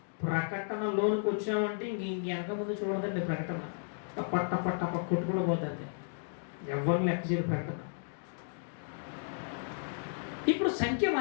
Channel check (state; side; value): silent; right; digital silence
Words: ప్రకటనలోనికి వచ్చామంటే ఇంక వెనక ముందు చూడదండి. ప్రకటన టప్ప కొట్టుకుని పోతుంది. ఎవరు లెక్క చేయరు ప్రకటన. ఇప్పుడు సంఖ్య